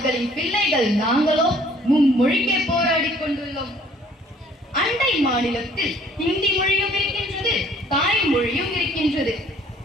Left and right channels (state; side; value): normal; both; correlation 0.58